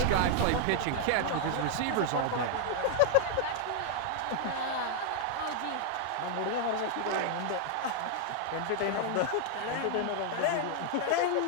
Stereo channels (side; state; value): both; different; correlation 0.00